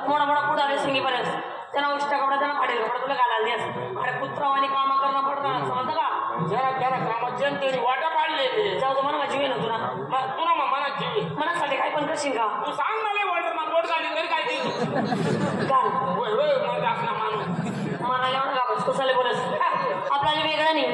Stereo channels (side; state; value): both; identical; correlation 1.00